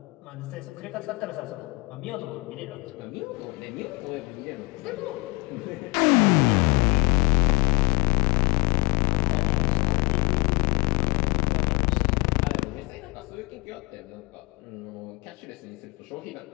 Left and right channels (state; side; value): quieter; right; 26.6 dB